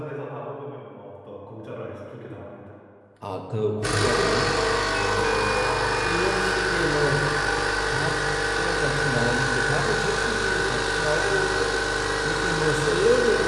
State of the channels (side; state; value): both; identical; correlation 1.00